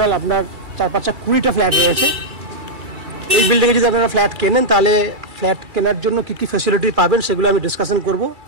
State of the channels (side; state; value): left; late; 2.3 ms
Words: আপনার 4-5 20টা ফ্ল্যাট রয়েছে। এই বিল্ডিংয়ে যদি আপনারা ফ্ল্যাট কেনেন তাহলে ফ্ল্যাট কেনার জন্য কী কী ফ্যাসিলিটি পাবেন সেগুলো আমি ডিসকাশন করব।